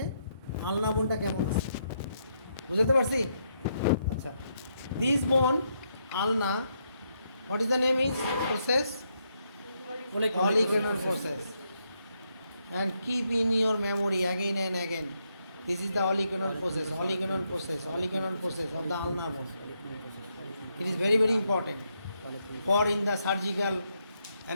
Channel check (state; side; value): inverted; both; correlation -0.78